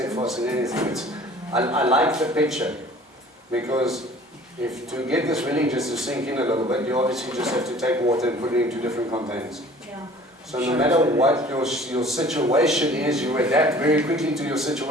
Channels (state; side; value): normal; both; correlation 0.48